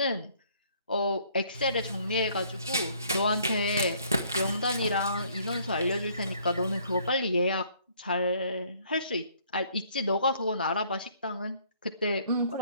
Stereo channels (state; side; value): inverted; both; correlation -0.62